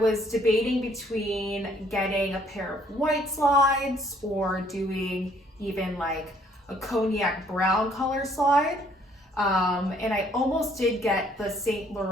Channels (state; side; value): normal; both; correlation 0.63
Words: debating between getting a pair of white slides or doing even like a cognac brown color slide. And I almost did get the Saint